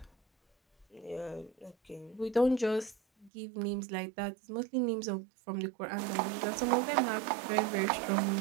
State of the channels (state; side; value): drops out; left; at 3.3 s